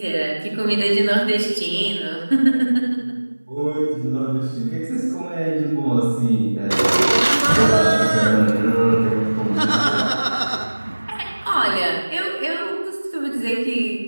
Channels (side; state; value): both; inverted; correlation -1.00